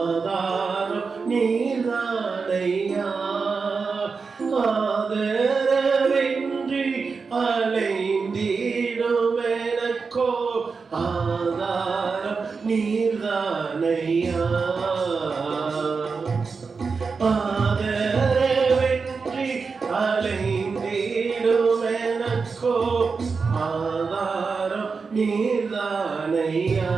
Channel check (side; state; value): left; quieter; 4.9 dB